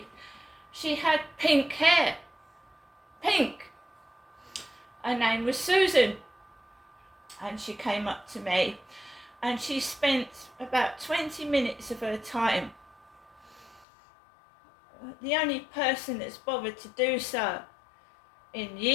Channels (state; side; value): drops out; right; at 13.9 s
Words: She had pink hair. Pink. Her name was Susan. And she came up to me and she spent about 20 minutes of her time, the only person that's bothered to do so in